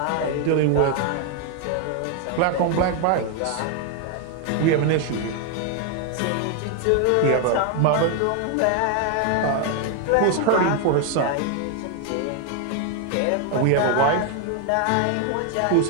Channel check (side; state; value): both; different; correlation 0.01